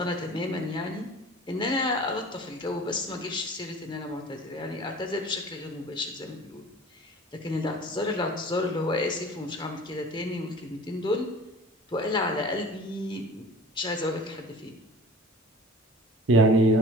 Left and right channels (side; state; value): both; normal; correlation 0.42